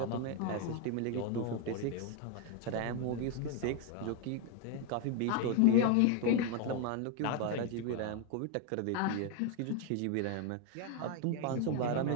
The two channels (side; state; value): both; different; correlation 0.01